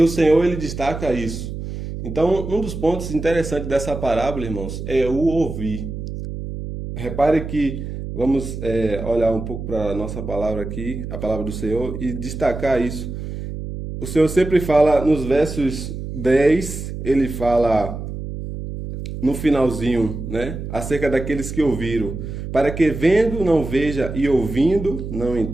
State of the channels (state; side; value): noise; right; hum, 7 dB below the sound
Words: o Senhor ele destaca isso. Então, um dos pontos interessantes dessa parábola, irmãos, é o ouvir. Repare que vamos olhar um pouco para a nossa palavra aqui, a palavra do Senhor, e destacar isso. O Senhor sempre fala nos versos 10, ele fala no finalzinho, né, acerca daqueles que ouviram, para que vendo não veja e ouvindo não